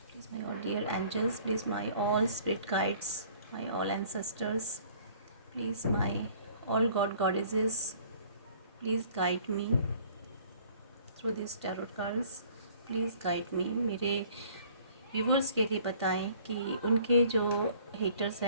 please my all dear angels, please my all spirit guides, my all ancestors, please my all god goddesses, please guide me through these tarot cards, please guide me। मेरे व्यूवर्स के लिए बताएं कि उनके जो हेटर्स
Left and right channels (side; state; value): both; inverted; correlation -0.55